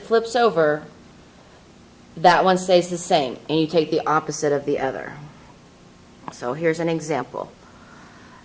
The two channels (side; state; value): both; identical; correlation 1.00